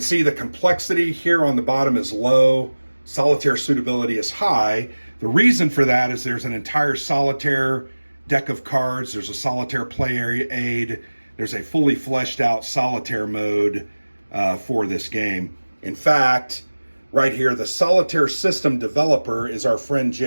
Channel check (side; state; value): both; inverted; correlation -1.00